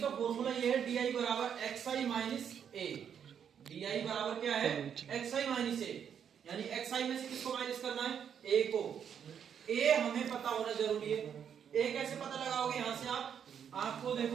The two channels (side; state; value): left; quieter; 8.1 dB